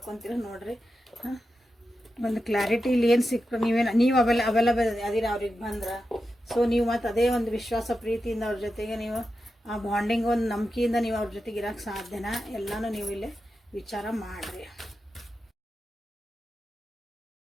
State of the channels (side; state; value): both; normal; correlation 0.90